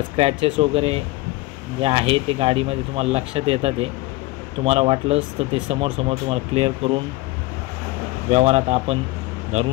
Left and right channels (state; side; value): quieter; right; 19.9 dB